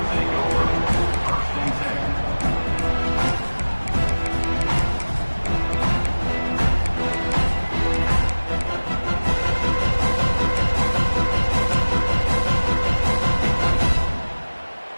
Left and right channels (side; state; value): both; inverted; correlation -1.00